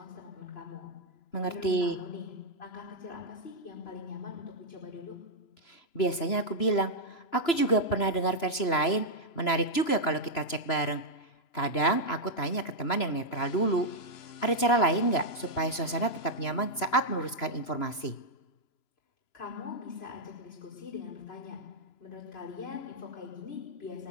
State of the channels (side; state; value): right; late; 3.0 ms